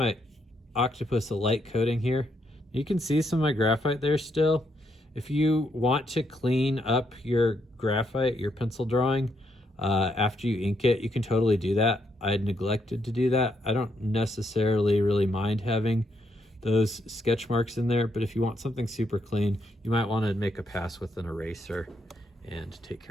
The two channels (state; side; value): normal; both; correlation 0.77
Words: octopus a light coating here. You can see some of my graphite there still. If you want to clean up your graphite, your pencil drawing, after you ink it. You can totally do that. I had neglected to do that. I don't necessarily really mind having those sketch marks in there, but if you want something super clean, you might want to make a pass with an eraser and take